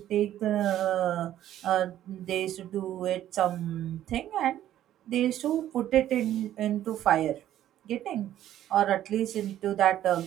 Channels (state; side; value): quieter; left; 12.2 dB